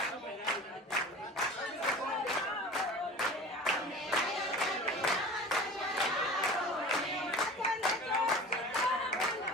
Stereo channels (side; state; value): both; normal; correlation 0.38